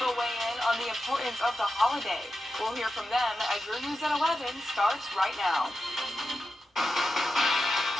weigh in on the importance of the holiday. We'll hear from them as your News at 11 starts right now.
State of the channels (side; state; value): both; normal; correlation 0.90